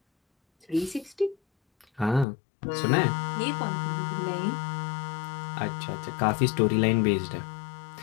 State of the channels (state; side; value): drops out; right; at 2.2 s